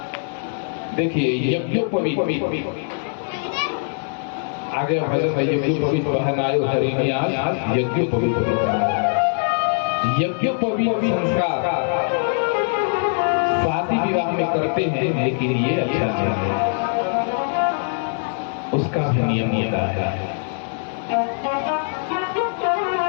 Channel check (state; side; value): silent; right; 61 dB below the other